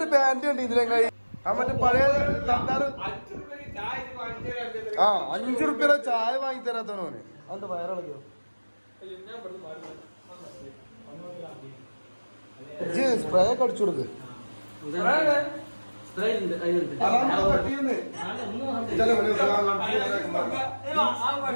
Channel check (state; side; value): inverted; both; correlation -1.00